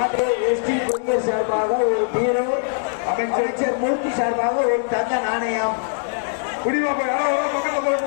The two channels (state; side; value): silent; right; digital silence